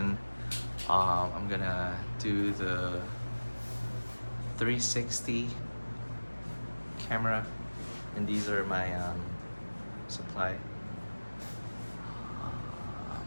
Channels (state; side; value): inverted; both; correlation -1.00